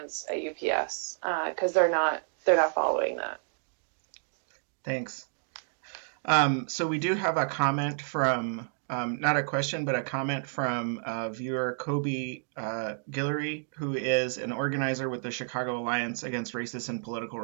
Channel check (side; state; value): left; silent; digital silence